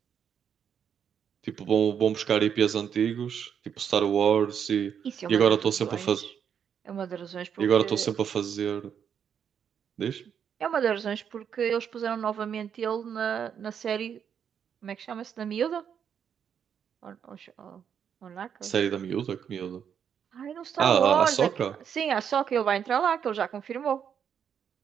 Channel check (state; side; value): quieter; left; 8.0 dB